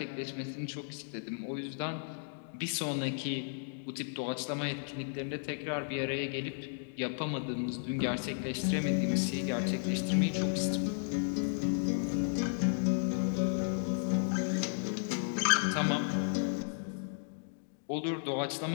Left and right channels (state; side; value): silent; right; digital silence